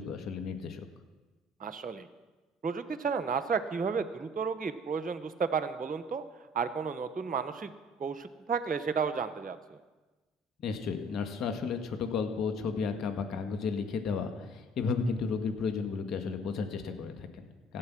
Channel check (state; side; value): normal; both; correlation 0.52